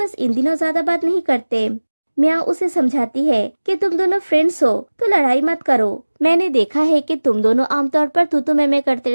इन दिनों ज्यादा बात नहीं करते। मियाओ उसे समझाती है कि तुम दोनों फ्रेंड्स हो तो लड़ाई मत करो। मैंने देखा है कि तुम दोनों आमतौर पर तू मैं करते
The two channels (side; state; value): both; inverted; correlation -1.00